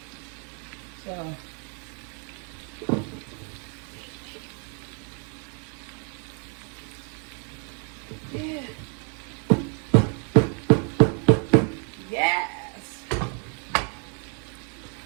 So, yeah. Yes.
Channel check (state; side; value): quieter; left; 39.4 dB